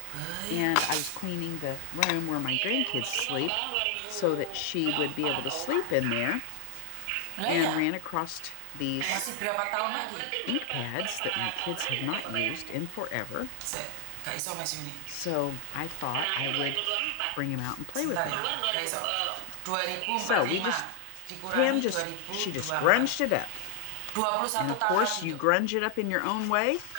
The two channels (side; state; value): both; different; correlation 0.00